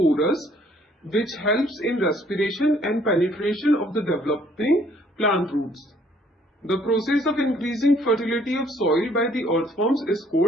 which helps in respiration and penetration of the developing plant roots. The process of increasing fertility of soil by the earthworms is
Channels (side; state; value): both; normal; correlation 0.62